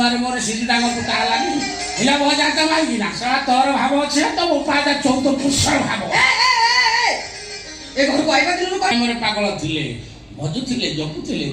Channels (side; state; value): both; identical; correlation 1.00